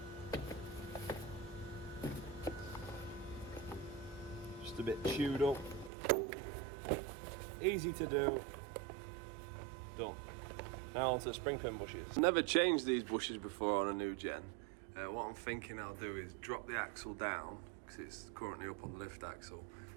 Just a bit chewed up. Easy to do. Done. Now onto the spring pin bushes. Never changed these bushes before on a new gen. What I'm thinking I'll do is drop the axle down, because it's currently up on the lift axle.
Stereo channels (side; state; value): left; drops out; at 5.9 s